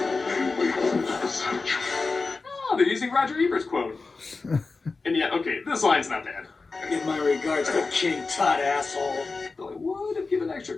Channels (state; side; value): quieter; right; 4.0 dB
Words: Oh, they're using Roger Ebert's quote. And yeah, okay, this line's not bad. Give my regards to King Tut, asshole. Though I would have given extra